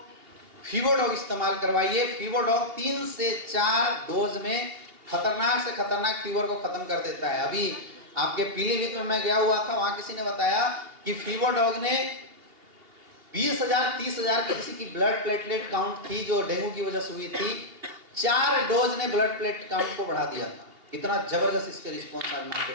फीवरडॉग इस्तेमाल करवाइए। फीवरडॉग 3 से 4 डोज में खतरनाक से खतरनाक फीवर को खत्म कर देता है। अभी आपके पीलीभीत में मैं गया हुआ था, वहां किसी ने बताया कि फीवरडॉग ने 20,000 30,000 की किसी की ब्लड प्लेटलेट काउंट थी जो डेंगू की वजह से हुई थी, 4 डोज ने ब्लड प्लेट काउंट को बढ़ा दिया था। इतना जबरदस्त इसके रिस्पॉन्स आज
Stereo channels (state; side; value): late; left; 2.8 ms